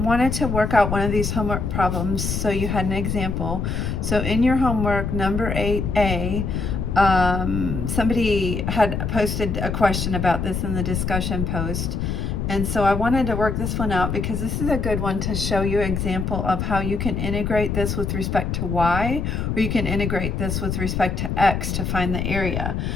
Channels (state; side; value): noise; left; rumble, 2 dB below the sound